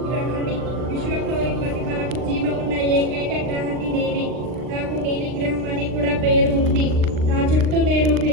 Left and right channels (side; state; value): left; late; 39 ms